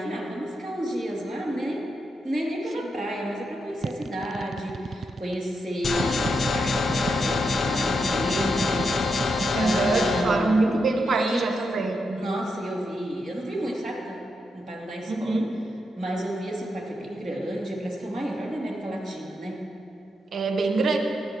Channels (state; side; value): normal; both; correlation 0.83